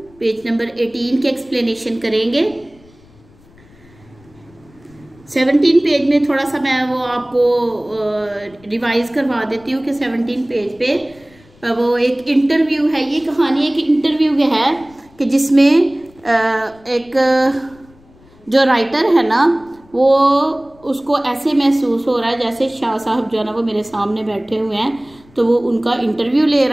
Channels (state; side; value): noise; left; rumble, 27 dB below the sound